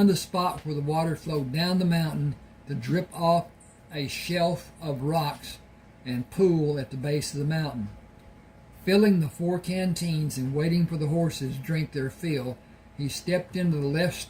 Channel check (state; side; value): identical; both; correlation 1.00